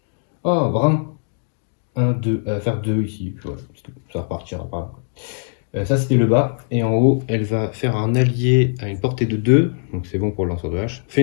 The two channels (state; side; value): silent; right; 62 dB below the other